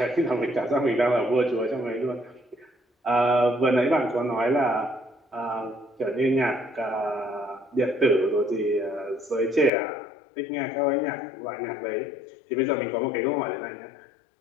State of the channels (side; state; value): right; drops out; at 9.7 s